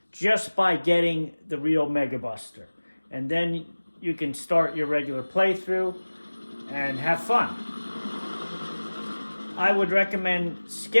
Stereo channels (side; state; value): both; inverted; correlation -1.00